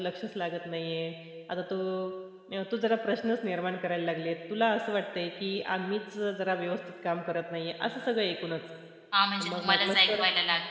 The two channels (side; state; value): both; identical; correlation 1.00